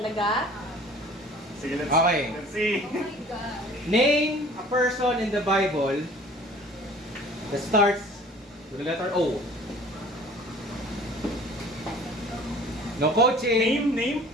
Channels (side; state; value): both; normal; correlation 0.48